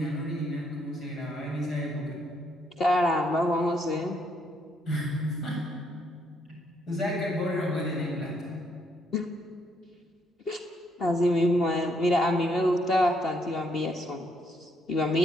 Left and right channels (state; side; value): normal; both; correlation 0.72